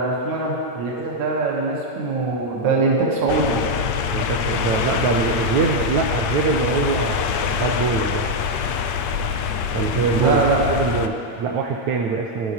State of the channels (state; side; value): late; left; 8.4 ms